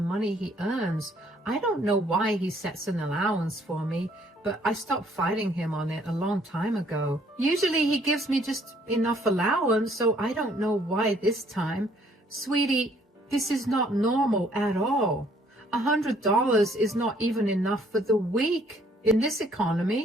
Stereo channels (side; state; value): both; normal; correlation 0.63